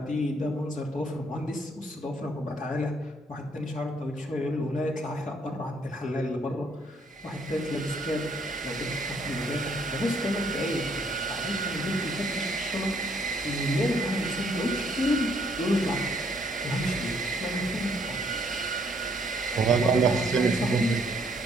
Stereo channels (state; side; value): normal; both; correlation 0.67